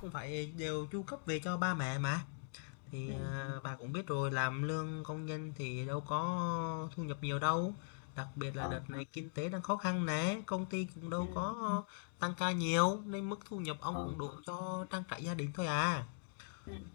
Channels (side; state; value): right; silent; digital silence